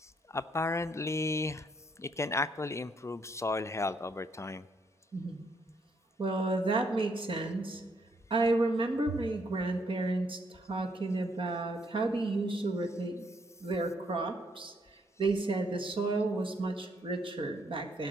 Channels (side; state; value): both; normal; correlation 0.72